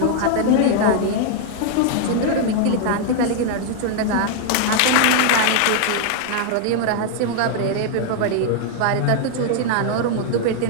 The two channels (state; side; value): different; both; correlation 0.00